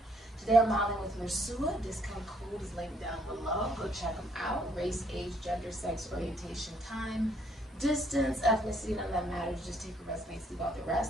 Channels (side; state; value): both; normal; correlation 0.67